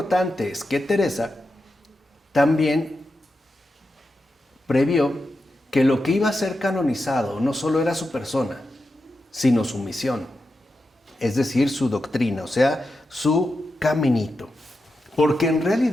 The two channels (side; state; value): both; normal; correlation 0.89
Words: es que Teresa también previó que lo que iba a ser canonizado no solo era su persona, sino su misión, es decir, su doctrina, o sea, su caminito. Porque en